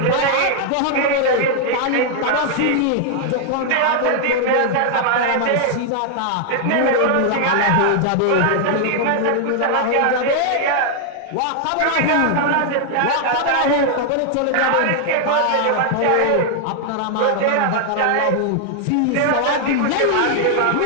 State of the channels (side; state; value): both; different; correlation 0.00